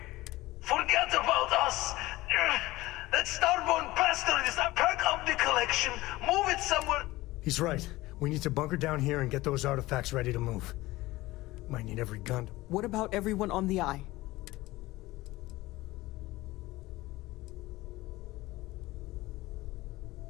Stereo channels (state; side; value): quieter; right; 18.8 dB